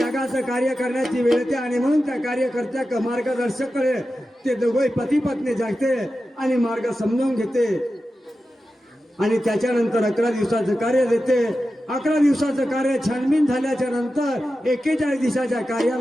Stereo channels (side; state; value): both; normal; correlation 0.92